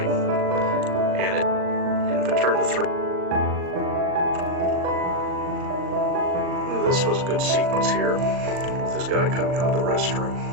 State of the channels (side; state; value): left; late; 39 ms